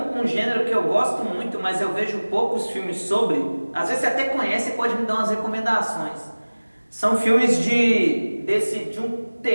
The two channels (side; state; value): both; inverted; correlation -1.00